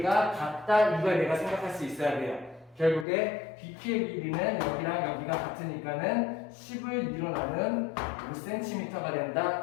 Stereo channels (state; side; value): drops out; right; at 3.1 s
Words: 같다 이걸 내가 생각할 수 있어야 돼요. 결국에 BQ의 길이는 여기랑 여기가 같으니까는 10을 일어나는 5cm가